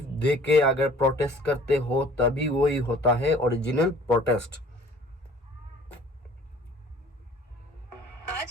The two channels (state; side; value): normal; both; correlation 0.52